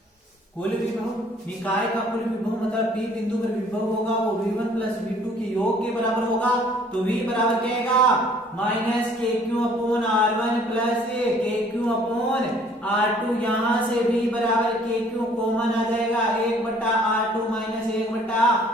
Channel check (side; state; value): both; normal; correlation 0.57